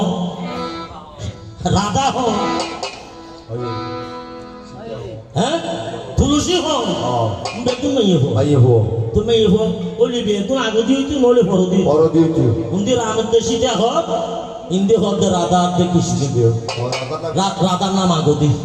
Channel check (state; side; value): identical; both; correlation 1.00